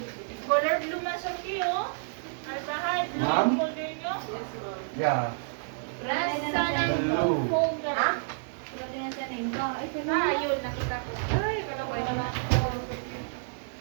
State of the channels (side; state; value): left; silent; digital silence